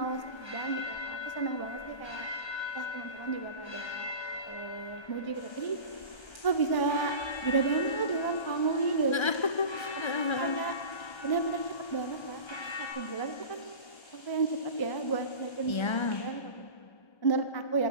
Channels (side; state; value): right; late; 1.3 ms